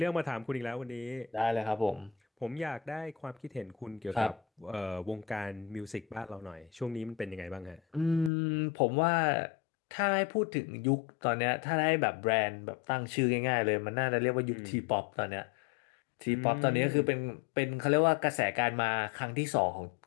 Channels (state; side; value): drops out; right; at 8.3 s